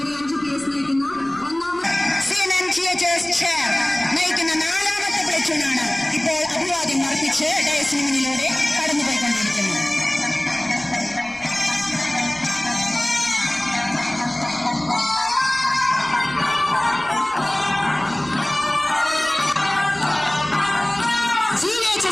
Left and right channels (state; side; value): noise; left; rumble, 26 dB below the sound